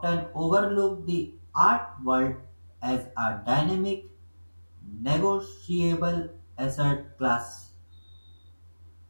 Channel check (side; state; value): both; inverted; correlation -1.00